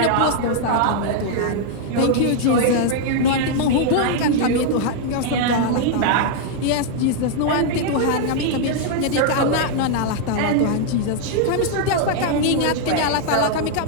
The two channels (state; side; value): different; both; correlation 0.00